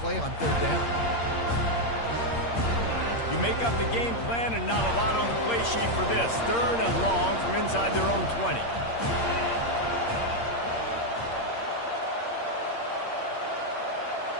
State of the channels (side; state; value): right; late; 8.6 ms